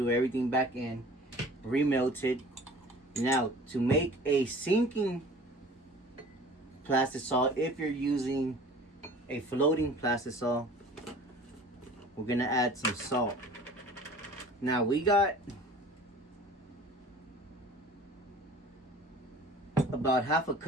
everything back in, remelted. Now, to make a sinking plastisol, if you're using a floating plastisol, we're gonna add some salt. Now we got about half a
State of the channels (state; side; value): normal; both; correlation 0.45